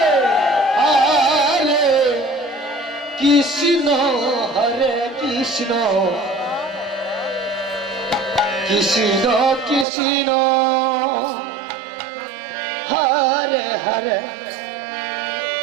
হরে কৃষ্ণ, হরে কৃষ্ণ, কৃষ্ণ কৃষ্ণ, হরে হরে,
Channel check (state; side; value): drops out; left; at 9.9 s